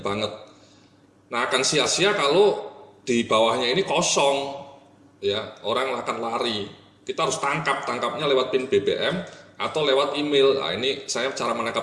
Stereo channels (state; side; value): identical; both; correlation 1.00